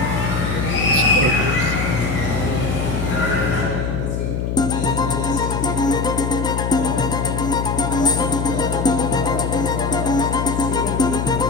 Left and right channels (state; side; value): noise; left; hum, 1 dB below the sound